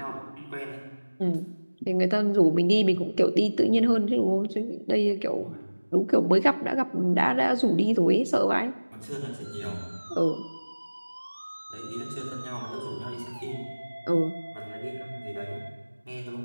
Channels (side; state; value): both; inverted; correlation -1.00